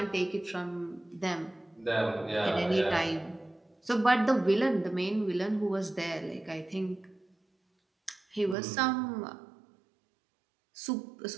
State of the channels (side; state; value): left; drops out; at 8.6 s